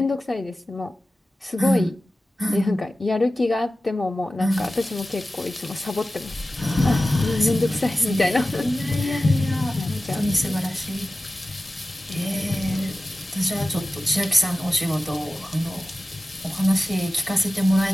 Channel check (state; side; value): normal; both; correlation 0.95